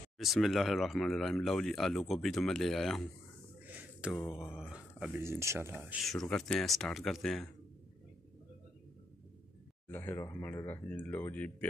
बिस्मिल्लाहिर्रहमानिर्रहीम। लो जी आलू गोभी तो मैं ले आया हूँ, तो अभी इंशाल्लाह शुरू करते हैं, स्टार्ट करते हैं। बिस्मिल्लाहिर्रहमानिर्रहीम। लो जी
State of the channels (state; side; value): normal; both; correlation 0.79